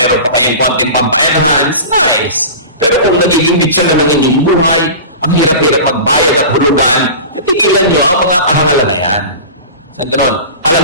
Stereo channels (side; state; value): both; inverted; correlation -0.34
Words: pa kayong konting pampa-enhance, nice. Pero kung nagiging bitsa na ng inyong buhay, ang hirap-hirap magbayad at hulugan, titigilan nyo ang mga kahangalan na yan. Sa ganon, alam